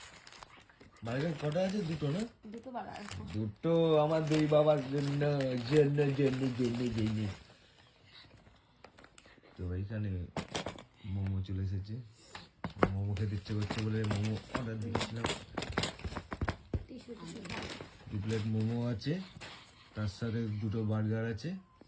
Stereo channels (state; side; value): identical; both; correlation 1.00